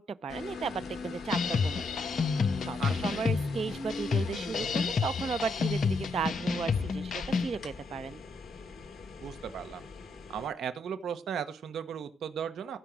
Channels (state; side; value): normal; both; correlation 0.76